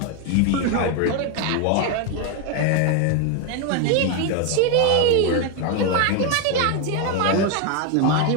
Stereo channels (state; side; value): different; both; correlation 0.01